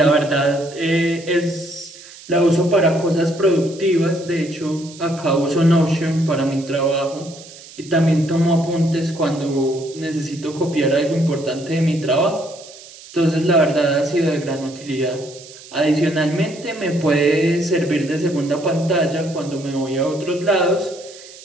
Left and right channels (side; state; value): right; noise; hiss, 19 dB below the sound